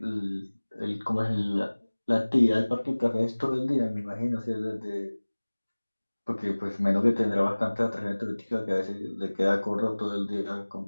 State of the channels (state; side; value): inverted; both; correlation -1.00